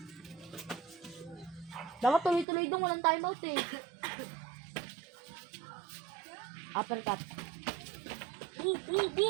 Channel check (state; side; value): drops out; left; at 2.5 s